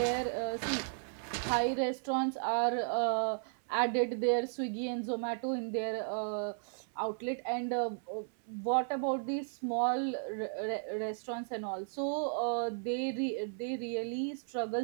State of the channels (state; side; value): silent; left; 55 dB below the other